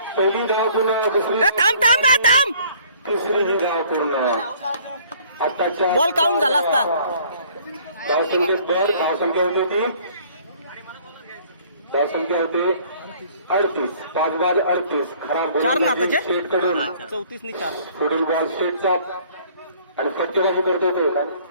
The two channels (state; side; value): inverted; both; correlation -0.56